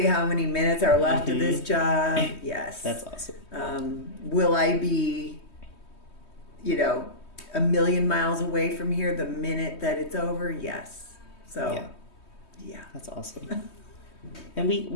how many minutes are left of this job? Yes. That's awesome. Will I be, a million miles away from here the minute that it's over? Yes. So, yeah. That's awesome. And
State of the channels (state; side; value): late; right; 3.2 ms